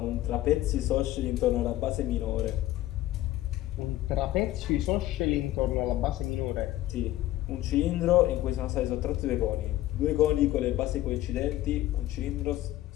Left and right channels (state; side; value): quieter; right; 15.0 dB